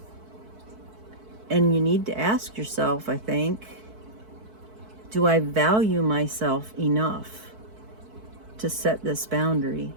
And you need to ask yourself, I think, do I value myself enough to set this boundary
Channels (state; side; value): late; left; 4.6 ms